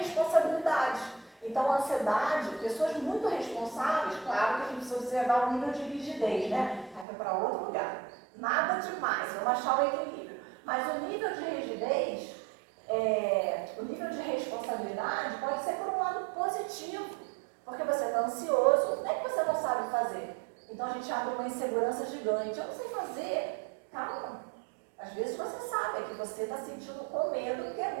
Então a ansiedade, pessoas muito responsáveis, claro que a gente precisa observar o nível de rigidez, né? Aí vai para outro lugar. Nada demais, vamos achar o equilíbrio. Mas o nível de rigidez, o nível de responsabilidade pode ser por um lado positivo, porque você está ansioso, não é que você não sabe fazer. Então a gente abre uma insegurança gigante. Eu não sei fazer. Calma. Às vezes você sabe, é que você está sentindo com medo, porque é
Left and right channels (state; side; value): drops out; left; at 7.1 s